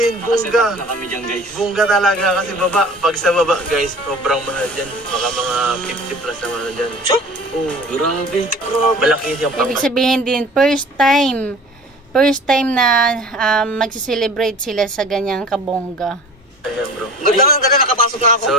bongga. Na kami dyan, guys. Bongga talaga kasi baba. Pag sa baba, guys, sobrang mahal dyan. Baka mga 50 plus na mahal dyan. So? Oo. Grabe. Malaki yung pangkat. Ibig sabihin din, first time na magsi-celebrate sila sa ganyang kabongga. Ayan, bro. Ganda nakapasok na ako. So,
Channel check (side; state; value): both; normal; correlation 0.43